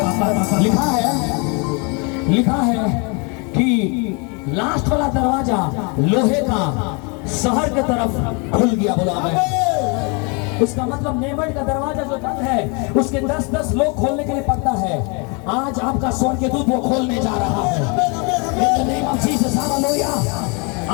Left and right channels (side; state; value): right; quieter; 32.4 dB